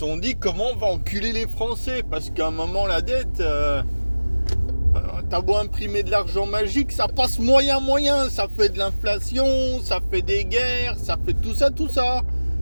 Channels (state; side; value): inverted; both; correlation -1.00